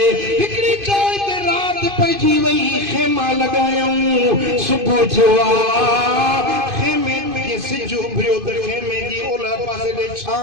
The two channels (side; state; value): left; late; 2.5 ms